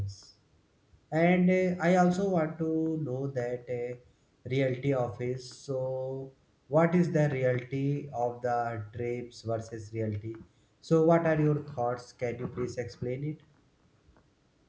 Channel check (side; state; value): both; identical; correlation 1.00